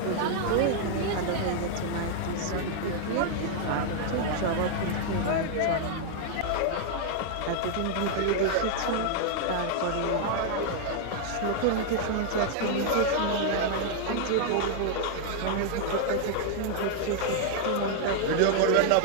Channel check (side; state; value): both; different; correlation 0.00